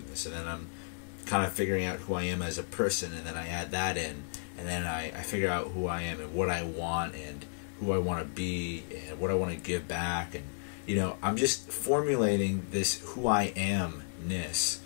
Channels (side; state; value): right; silent; digital silence